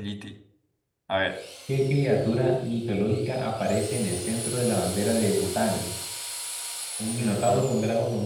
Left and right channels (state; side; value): identical; both; correlation 1.00